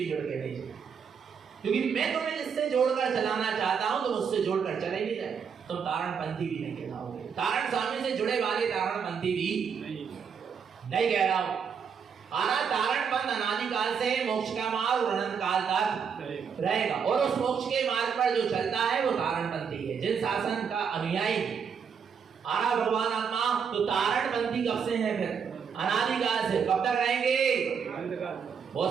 जुड़ के नहीं चले, क्योंकि मैं तुम्हें जिससे जोड़कर चलाना चाहता हूं तुम उससे जोड़कर चले नहीं जाए, तुम तारणपंथी भी नहीं कहलाओगे। तारण स्वामी से जुड़े वाले तारणपंथी भी नहीं कह रहा हूं। आना तारणपंथ अनादिकाल से मोक्ष का मार्ग और अनंत काल तक रहेगा, और उस मोक्ष के मार्ग पर जो चलता है वो तारणपंथी है, जिन शासन का अनुयायी है। आना भगवान आत्मा तो तारणपंथी कब से है? फिर अनादिकाल से। कब तक रहेंगे?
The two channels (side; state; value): left; quieter; 6.7 dB